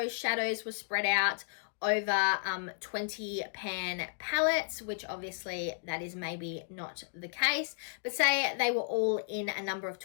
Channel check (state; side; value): silent; right; digital silence